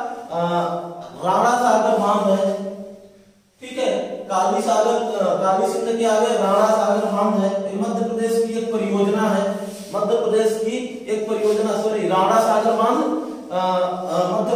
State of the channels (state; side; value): identical; both; correlation 1.00